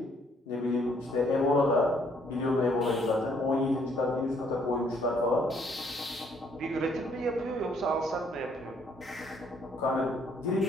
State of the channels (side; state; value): both; normal; correlation 0.66